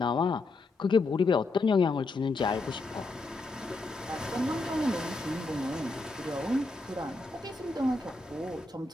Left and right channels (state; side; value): quieter; right; 3.3 dB